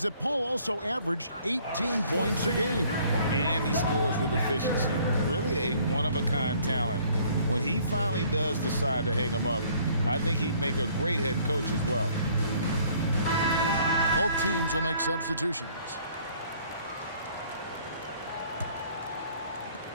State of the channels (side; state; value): both; inverted; correlation -0.59